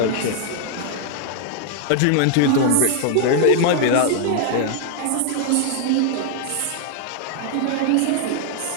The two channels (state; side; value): different; both; correlation 0.00